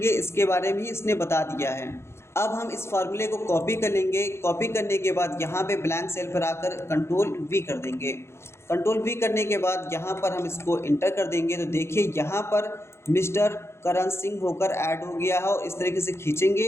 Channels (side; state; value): right; late; 0.13 ms